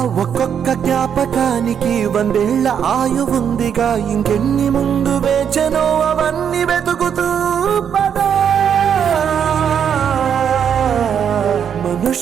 ఒక్కొక్క జ్ఞాపకానికి 100 ఏళ్ల ఆయువుందిగా, ఇంకెన్ని ముందు వేచనో అవన్నీ వెతుకుతూ పదా.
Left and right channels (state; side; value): quieter; left; 8.1 dB